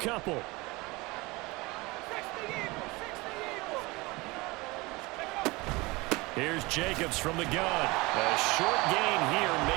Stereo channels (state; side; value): quieter; left; 23.5 dB